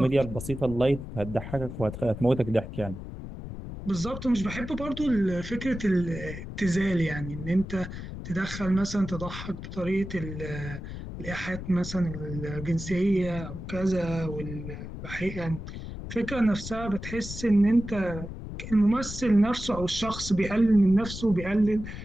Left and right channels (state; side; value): noise; left; rumble, 9 dB below the sound